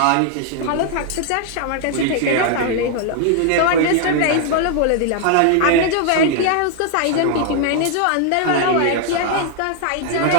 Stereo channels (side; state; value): both; different; correlation 0.00